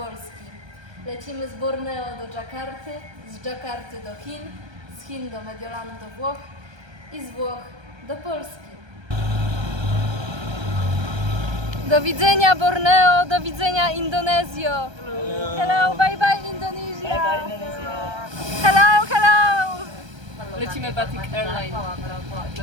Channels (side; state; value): left; late; 1.3 ms